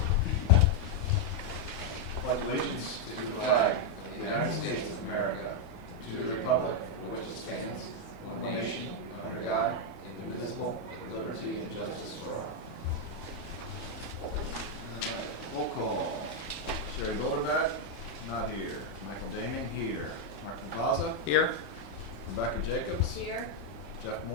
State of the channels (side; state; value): both; normal; correlation 0.00